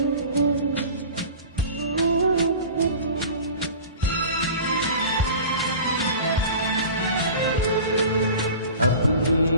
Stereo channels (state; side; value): inverted; both; correlation -0.38